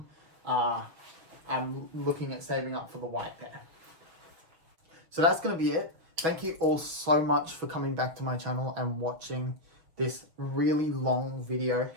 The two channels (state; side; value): late; left; 6.3 ms